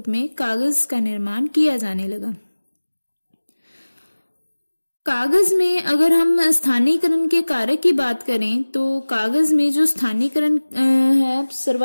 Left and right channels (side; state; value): both; inverted; correlation -1.00